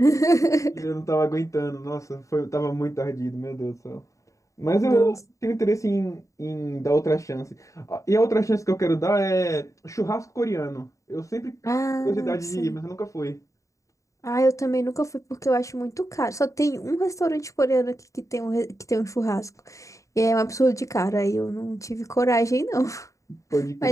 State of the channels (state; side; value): late; right; 0.15 ms